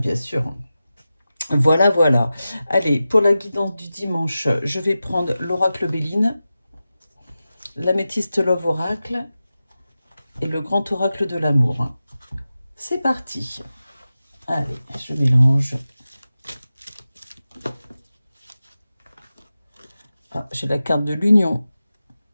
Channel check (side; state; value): both; inverted; correlation -0.93